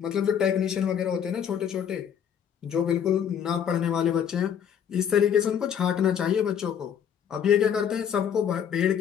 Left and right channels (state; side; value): quieter; right; 8.5 dB